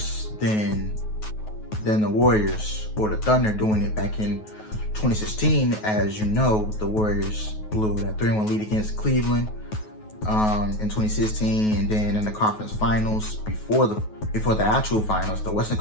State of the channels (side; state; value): right; late; 9.3 ms